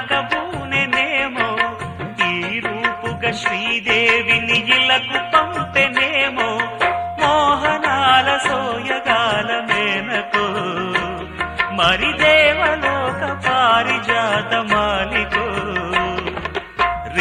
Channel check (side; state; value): both; identical; correlation 1.00